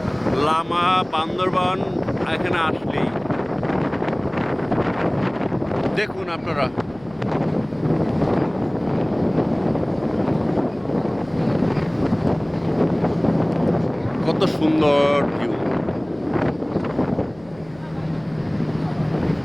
লামা, বান্দরবান এখানে আসলেই দেখুন আপনারা। কত সুন্দর ভিউ।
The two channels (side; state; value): left; noise; hum, 24 dB below the sound